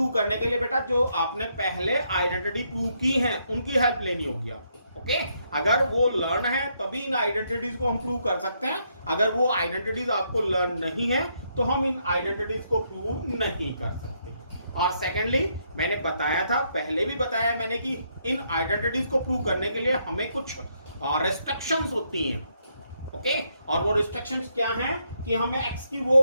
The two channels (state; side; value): inverted; both; correlation -0.75